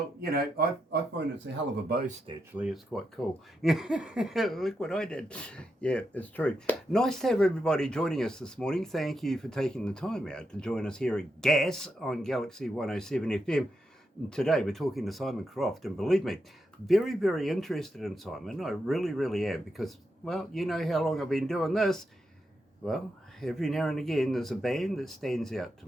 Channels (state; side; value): normal; both; correlation 0.84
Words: I find it's a hell of a boast, actually. It's quite cool. Look what I did. Yeah, it's true. Nice to have everybody joining us this morning. Thank you for taking the time out to join us here at GAS on Galaxy 107 FM. And today we're talking to Simon Croft, and believe me, very, very interested in Simon. I really, really am, because, well, you know how long I've been doing this. Well, every now and again there's a band that stands out to